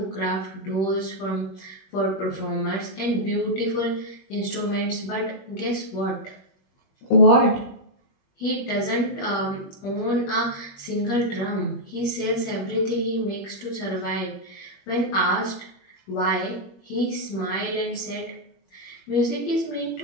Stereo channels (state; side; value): late; right; 21 ms